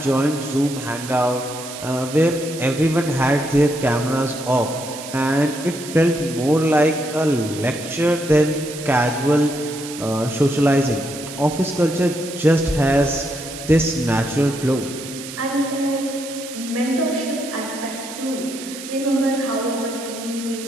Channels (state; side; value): noise; right; hiss, 12 dB below the sound